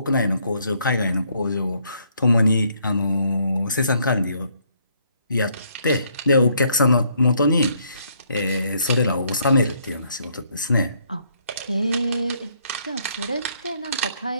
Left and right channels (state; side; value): inverted; both; correlation -0.69